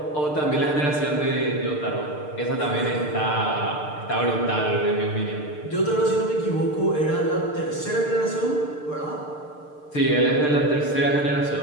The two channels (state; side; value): late; right; 6.7 ms